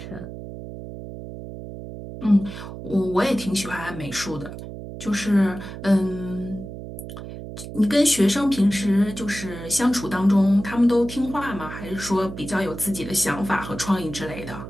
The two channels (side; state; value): right; noise; hum, 11 dB below the sound